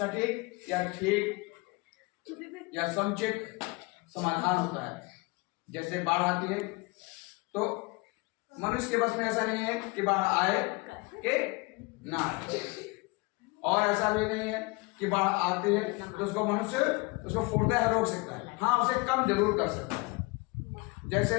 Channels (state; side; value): quieter; right; 25.9 dB